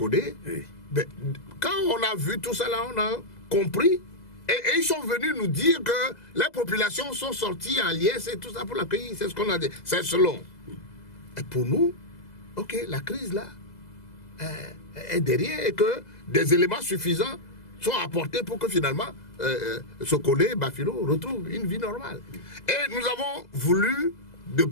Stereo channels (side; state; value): right; late; 2.0 ms